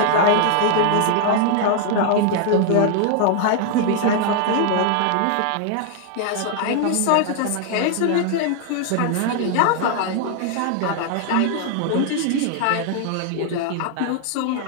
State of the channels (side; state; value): both; different; correlation 0.00